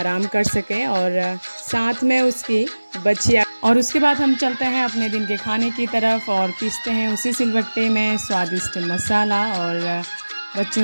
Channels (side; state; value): both; inverted; correlation -1.00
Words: कर सके और साथ में उसकी बछिया। और उसके बाद हम चलते हैं अपने दिन के खाने की तरफ और पीसते हैं उसी सिलबट्टे में स्वादिष्ट मसाला और